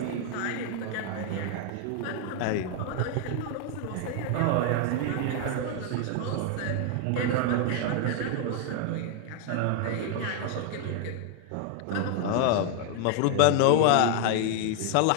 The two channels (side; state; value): both; different; correlation 0.00